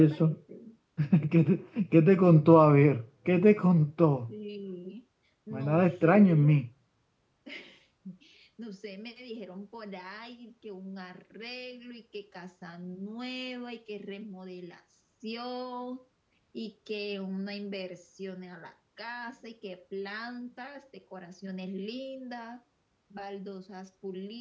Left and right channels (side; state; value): both; identical; correlation 1.00